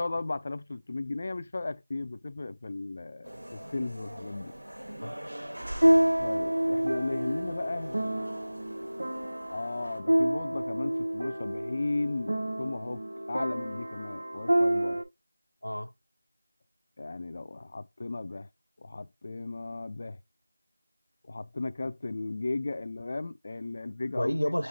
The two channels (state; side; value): inverted; both; correlation -0.98